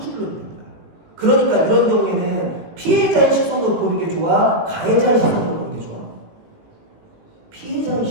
있는 거야. 그러니까 이런 경우에는 피해자의 시선으로 보는 게 좋아? 가해자의 시선으로 보는 게 좋아? 피해자의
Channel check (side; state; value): left; late; 18 ms